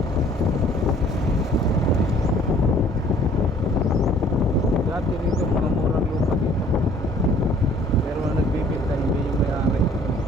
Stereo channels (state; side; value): normal; both; correlation 0.56